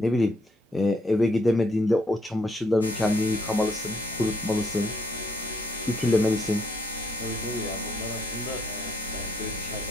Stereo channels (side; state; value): both; normal; correlation 0.71